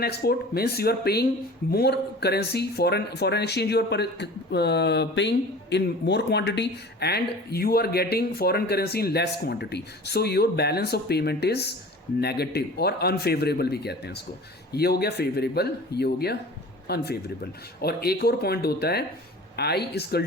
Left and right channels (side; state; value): both; normal; correlation 0.41